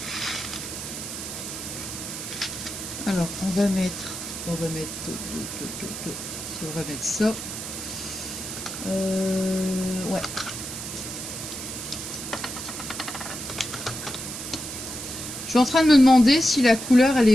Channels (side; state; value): right; noise; hiss, 7 dB below the sound